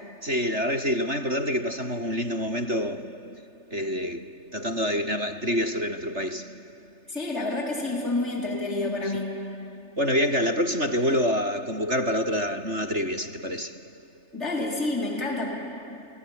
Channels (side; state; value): left; late; 3.3 ms